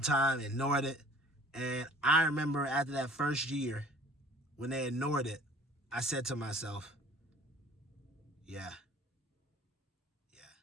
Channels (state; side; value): normal; both; correlation 0.51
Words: time, ignored it. And I remember after that first year, when they ignored it, I said to myself, yeah.